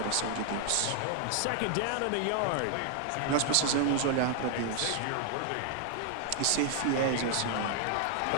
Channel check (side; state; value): both; different; correlation 0.00